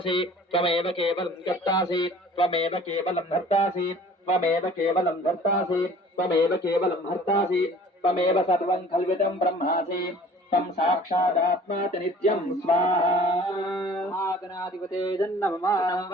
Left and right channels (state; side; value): normal; both; correlation 0.49